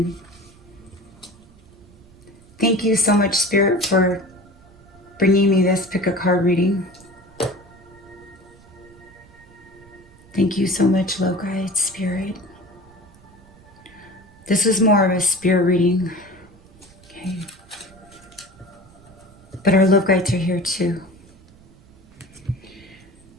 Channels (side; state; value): right; noise; rumble, 25 dB below the sound